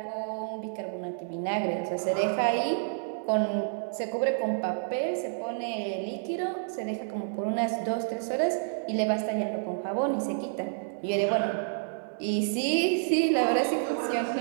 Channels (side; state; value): left; silent; digital silence